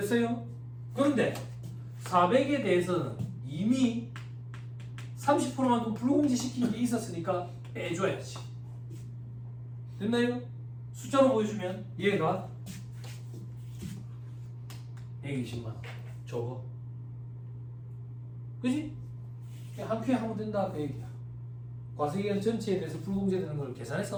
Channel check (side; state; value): both; identical; correlation 1.00